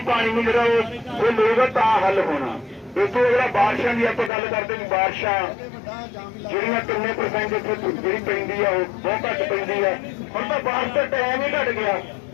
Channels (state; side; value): drops out; right; at 4.3 s